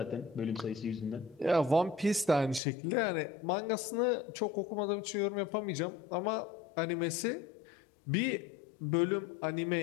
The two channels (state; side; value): drops out; right; at 2.6 s